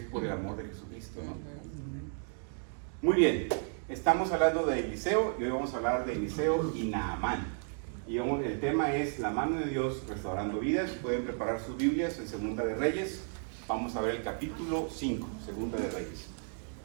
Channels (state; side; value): silent; left; 56 dB below the other